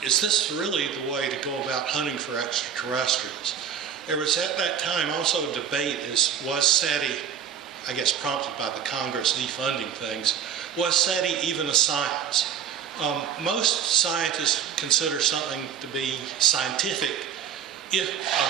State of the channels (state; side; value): quieter; left; 8.0 dB